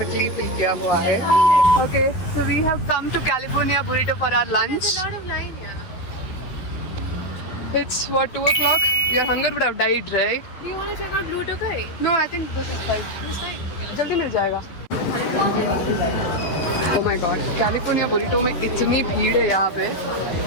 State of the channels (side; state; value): right; late; 11 ms